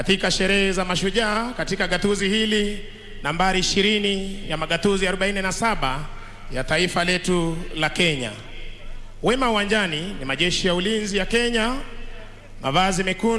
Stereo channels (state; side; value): identical; both; correlation 1.00